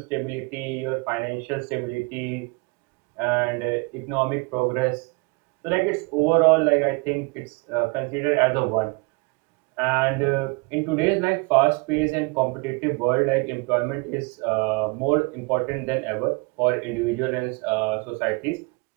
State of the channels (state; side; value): quieter; left; 29.7 dB